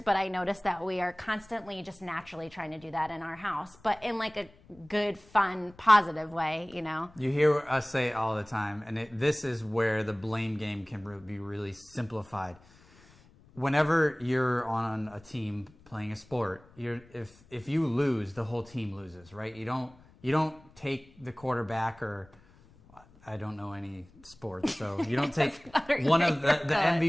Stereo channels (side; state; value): left; noise; rumble, 26 dB below the sound